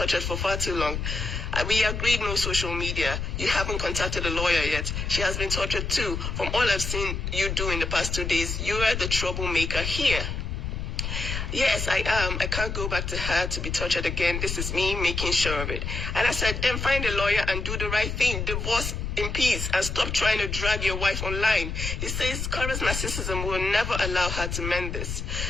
for far too long. We agreed no social media. You haven't contacted a lawyer yet. She has been tortured too. From all I've seen you do in the past 2 days, you are the troublemaker here. Yes, I am. I can't go back to her to be tortured again. This is me making sure of it. And I said, then find a lawyer and do the right thing. Divorce in peace and stop trying to drag your wife online. He says Korra's narcissism will never allow her to mend this.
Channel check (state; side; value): noise; left; rumble, 4 dB below the sound